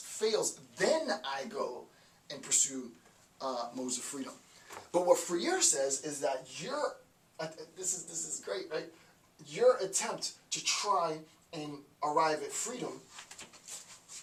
then I go and pursue modes of freedom. But what Freire says is that this is great, right? Your attempt to try and arrive at freedom,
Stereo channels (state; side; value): identical; both; correlation 1.00